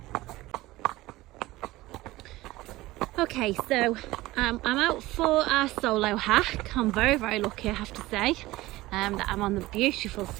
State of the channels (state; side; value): quieter; left; 18.3 dB